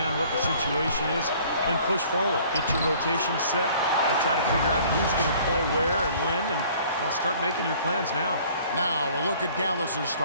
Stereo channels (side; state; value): both; inverted; correlation -0.54